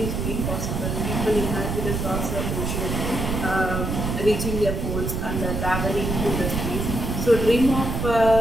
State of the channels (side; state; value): right; noise; rumble, 2 dB below the sound